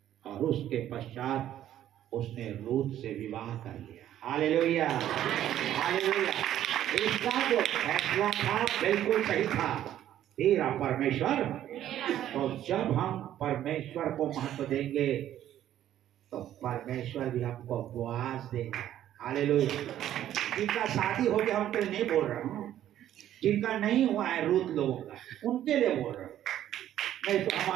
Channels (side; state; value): left; quieter; 11.8 dB